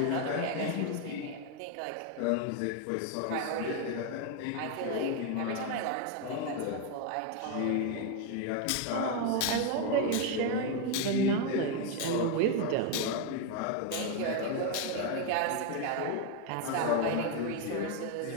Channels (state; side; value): different; both; correlation 0.01